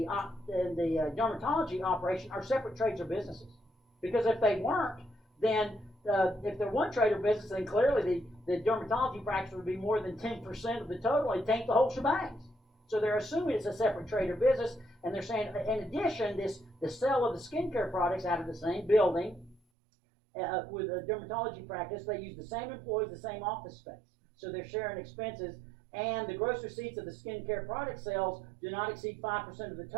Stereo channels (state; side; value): drops out; left; at 19.6 s